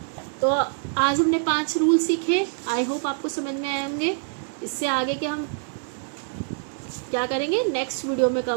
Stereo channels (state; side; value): silent; left; digital silence